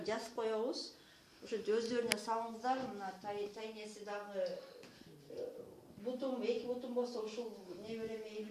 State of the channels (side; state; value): both; identical; correlation 1.00